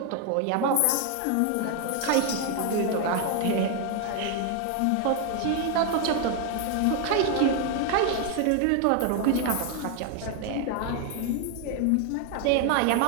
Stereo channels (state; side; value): different; both; correlation 0.01